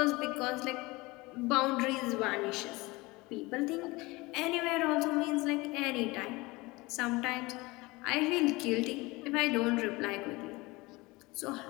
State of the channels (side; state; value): right; quieter; 22.7 dB